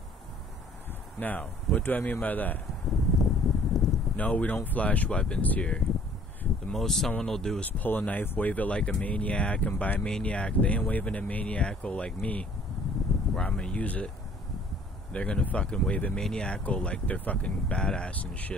Now, what do I mean by that? No, we don't flash weapons here. The most someone will do is pull a knife, wave it like a maniac, and by a maniac, they ain't waving a maniacal like me, where I'm gonna use it. They're gonna fucking wave it maniacal like they're fucking badass and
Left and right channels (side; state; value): both; normal; correlation 0.55